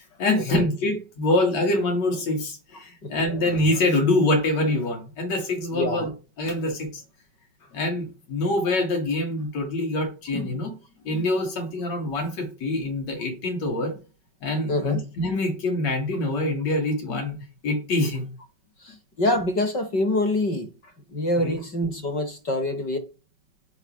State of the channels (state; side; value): late; right; 5.3 ms